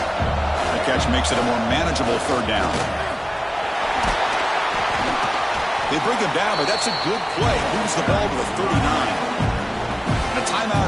The catch makes it a more manageable third down. They bring him down, but that's a good play. Moves the ball to a 39. A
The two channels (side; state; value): both; identical; correlation 1.00